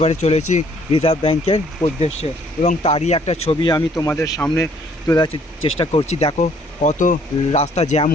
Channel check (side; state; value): both; normal; correlation 0.62